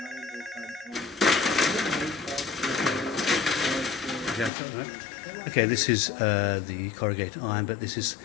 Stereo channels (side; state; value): right; drops out; at 4.5 s